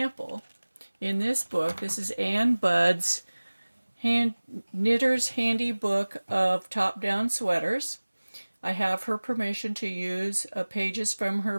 in this book, this is Ann Budd's Knitter's Handy Book of Top-Down Sweaters. I have her permission to use pages from her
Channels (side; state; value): both; inverted; correlation -1.00